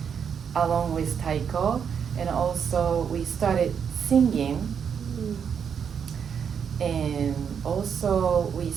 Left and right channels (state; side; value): quieter; left; 7.3 dB